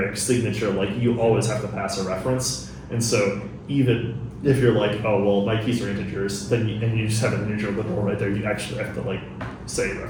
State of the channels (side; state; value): both; identical; correlation 1.00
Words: signature. Like you always have to pass a reference, and so even if you're like, oh well, my keys are integers, then and you just have an integer literal right there, you actually have to like say